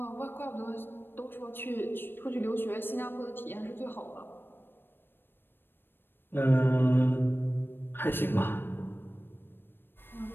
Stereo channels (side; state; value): right; late; 0.099 ms